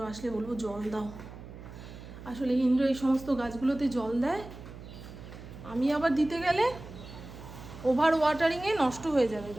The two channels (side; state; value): right; noise; hum, 14 dB below the sound